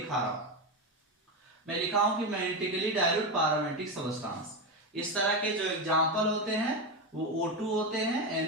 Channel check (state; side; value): normal; both; correlation 0.13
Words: रहा हूं, मैं लिखा हूं कि मैग्नेटिकली डायल्यूट पैरामैग्नेटिक सबस्टेंस। इस तरह के जो एग्जांपल होते हैं वो O2 होते हैं,